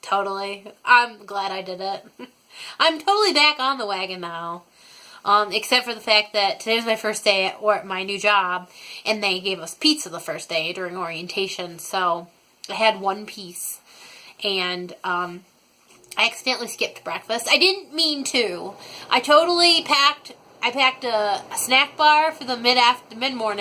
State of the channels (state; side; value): identical; both; correlation 1.00